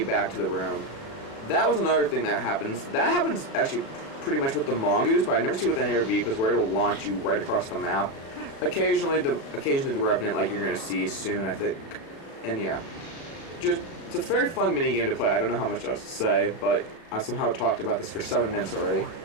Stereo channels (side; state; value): right; late; 36 ms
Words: back to the room. That was another thing that happens. That happens actually pretty much with the Mongoose, but I never see it with any other vehicles where it'll launch you right across the map. Occasionally the Revenant, like you're going to see soon, I think. And yeah. It's a very fun minigame to play. I don't know how much else to say, but I somehow talked about this for 7 minutes already.